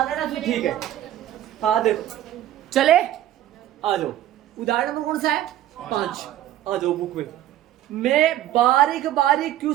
गया ना फिर ठीक है। हाँ देखो चले आ जाओ। उदाहरण नंबर कौन सा है? 5। आ जाओ बुक में। मैं बारीक बारीक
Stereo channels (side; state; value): left; quieter; 13.0 dB